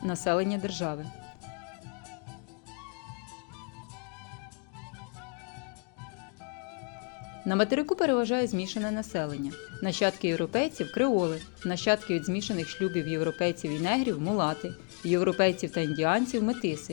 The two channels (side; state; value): right; quieter; 38.1 dB